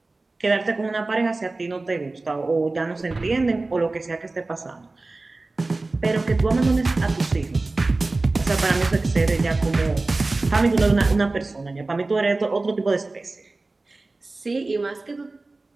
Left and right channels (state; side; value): quieter; left; 3.3 dB